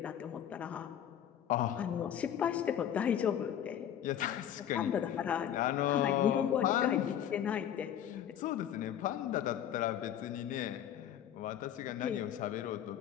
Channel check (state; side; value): quieter; right; 10.1 dB